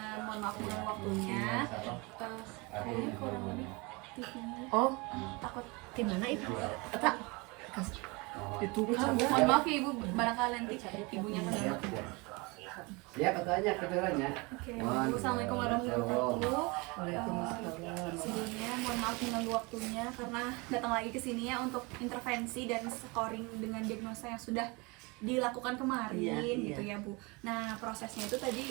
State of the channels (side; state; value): left; quieter; 27.0 dB